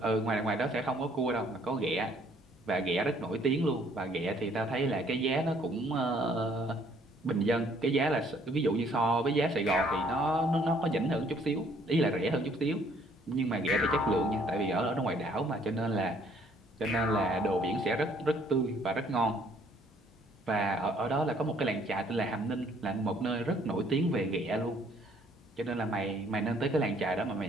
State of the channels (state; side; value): normal; both; correlation 0.62